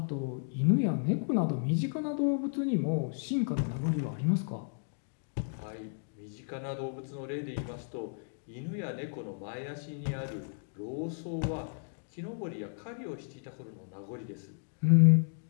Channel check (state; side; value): silent; right; digital silence